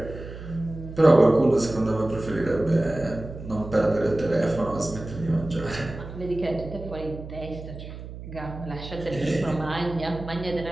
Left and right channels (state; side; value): noise; right; hum, 12 dB below the sound